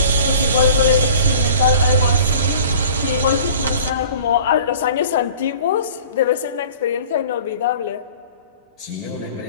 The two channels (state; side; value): inverted; both; correlation -0.45